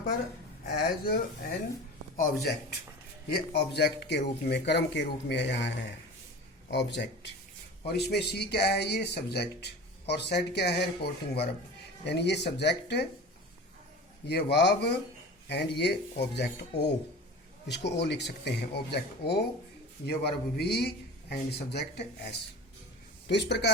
पर, एज एन ऑब्जेक्ट। ये ऑब्जेक्ट के रूप में, कर्म के रूप में यहाँ है ऑब्जेक्ट। और इसमें सी क्या है, ये सब्जेक्ट, और सेड क्या है, रिपोर्टिंग वर्ब। यानी ये सब्जेक्ट, ये वर्ब एंड ये ऑब्जेक्ट ओ, इसको ओ लिख सकते हैं, ऑब्जेक्ट ओ, ये verb V and subject S. तो इस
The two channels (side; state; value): both; normal; correlation 0.35